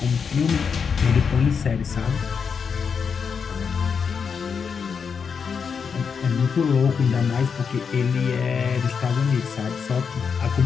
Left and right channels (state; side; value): quieter; right; 6.2 dB